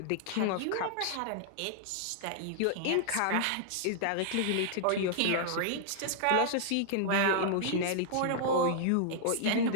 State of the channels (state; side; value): different; both; correlation -0.01